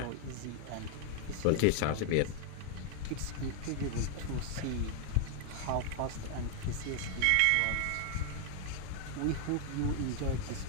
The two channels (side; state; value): both; different; correlation 0.00